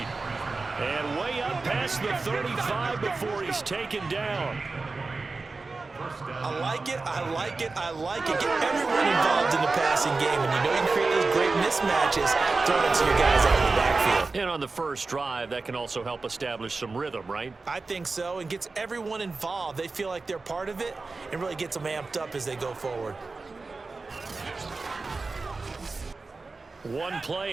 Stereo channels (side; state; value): left; quieter; 3.8 dB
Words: And way up past the 35 before he's taken down. I like it, I like it, I like it. Get everyone involved in the passing game, and you know you can create those great mismatches throwing it to your guys out of the backfield. And on the first drive, that can also help establish some rhythm, right? I think so, and gets everyone involved. They feel like they're part of it, and really gets them amped up as they go forward. One